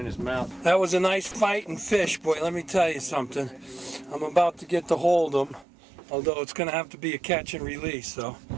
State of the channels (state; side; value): drops out; left; at 5.7 s